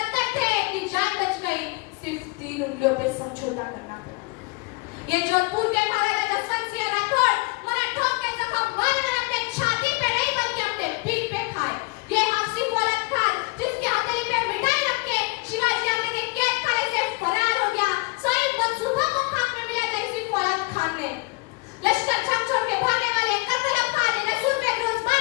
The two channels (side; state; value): right; quieter; 26.6 dB